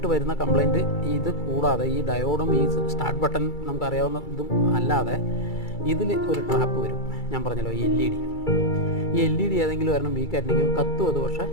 വരുന്ന കംപ്ലയിൻറ്റ് ഇത് കൂടാതെ ഈ ഡയോഡും ഈ സ്റ്റാർട്ട് ബട്ടൺ നമുക്കറിയാവുന്ന ഇതും അല്ലാതെ ഇതിൽ ഒരു ട്രാപ്പ് വരും. ഞാൻ പറഞ്ഞല്ലോ ഈ LED ഏതെങ്കിലും ഒരെണ്ണം വീക്കായിട്ടുണ്ടെങ്കിൽ കത്തും അത്, പക്ഷേ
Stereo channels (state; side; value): late; right; 2.3 ms